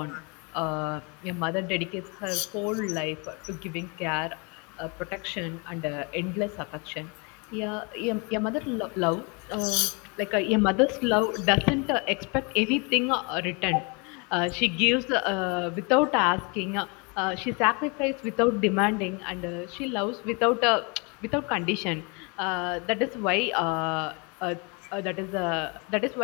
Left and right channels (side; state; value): right; quieter; 31.4 dB